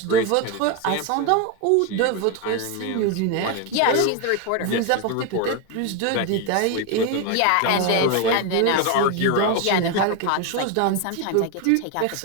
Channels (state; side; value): different; both; correlation 0.02